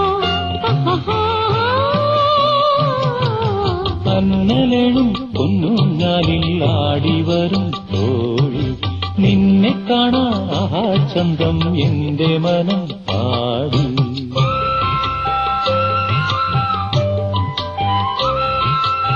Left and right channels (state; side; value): identical; both; correlation 1.00